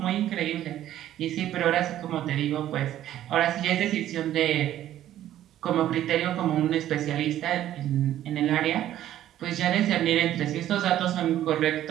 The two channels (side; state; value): left; quieter; 12.4 dB